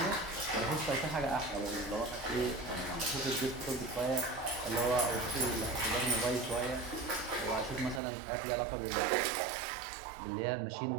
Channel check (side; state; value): left; drops out; at 8.0 s